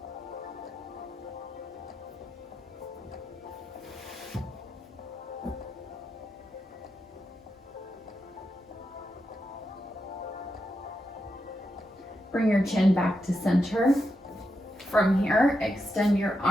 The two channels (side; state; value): both; normal; correlation 0.85